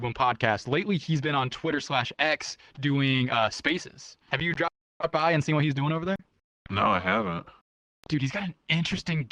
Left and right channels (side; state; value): both; identical; correlation 1.00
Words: podcasts. Lately, he's been on Twitter/X doing Spaces. Have you dropped by and seen what he's doing over there? No, I haven't. Dude, he's got an interesting